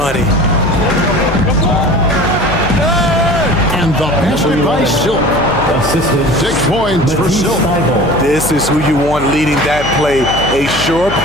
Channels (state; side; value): noise; left; hum, 9 dB below the sound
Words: And the basket by Silk. Assisted. 6 points for Silk. This is who you want leading that play. A sure